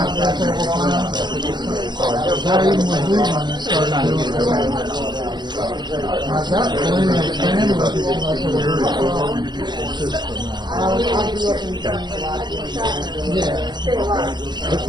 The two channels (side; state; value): left; late; 0.21 ms